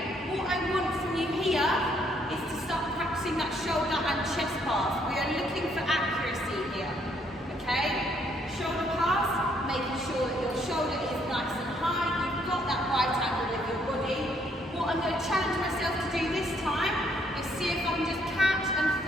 what I want from you here is to start practicing that shoulder and chest pass. We are looking for accuracy here, okay? Shoulder pass, making sure that your shoulder is nice and high, you've got that right angle with your body. What I'm going to challenge myself to do this time is see if I can just catch and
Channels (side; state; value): both; normal; correlation 0.69